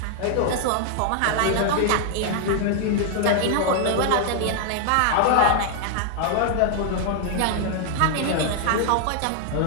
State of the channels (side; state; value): both; different; correlation 0.00